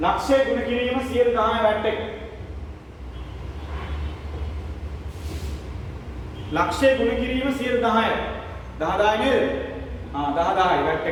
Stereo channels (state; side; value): identical; both; correlation 1.00